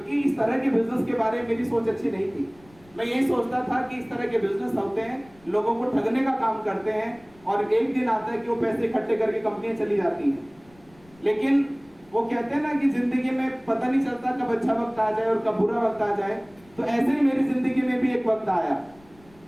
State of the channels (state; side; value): noise; left; rumble, 27 dB below the sound